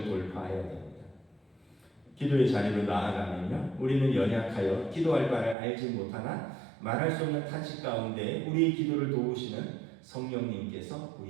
돌파해야 됩니다. 기도의 자리로 나아가면요, 우리는 연약하여 기도할 바를 알지 못하나 말할 수 없는 탄식 가운데 우리의 기도를 도우시는 성령님께서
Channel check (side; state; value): left; drops out; at 5.6 s